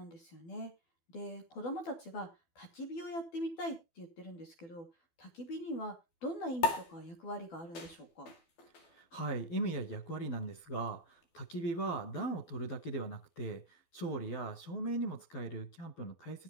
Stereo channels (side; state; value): right; late; 12 ms